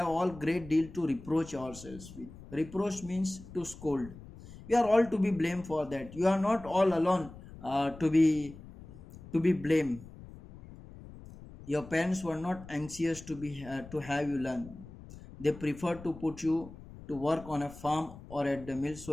all great deal to reproach ourselves with. Reproach means to scold. We are all to be blamed for that. You are not all alone to be blamed. Your parents were not anxious to have you learn. They preferred to put you to work on a farm or at the mill so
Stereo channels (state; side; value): noise; left; rumble, 17 dB below the sound